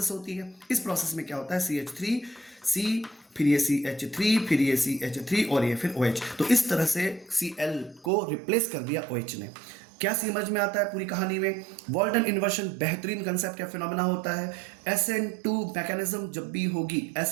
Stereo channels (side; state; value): left; drops out; at 8.1 s